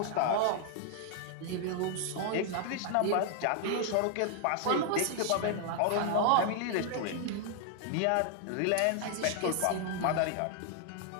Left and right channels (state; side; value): different; both; correlation 0.00